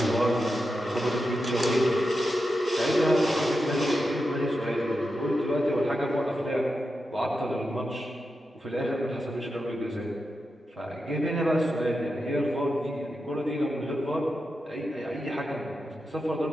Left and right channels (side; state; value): both; normal; correlation 0.89